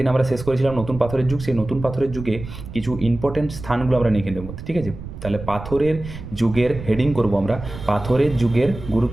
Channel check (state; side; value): noise; right; rumble, 11 dB below the sound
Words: আমরা শেষ করেছিলাম নতুন পাথরের যুগ, সেই নতুন পাথরের যুগে কিছু ইম্পর্টেন্ট স্থানগুলো আমরা লিখে নেব, ঠিক আছে? তাহলে পাথরের যুগের হেডিং করব আমরা, পাথরের যুগের